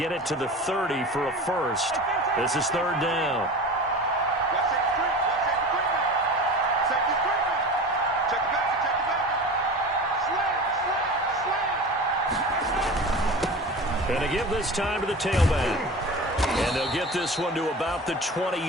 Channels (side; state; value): both; normal; correlation 0.33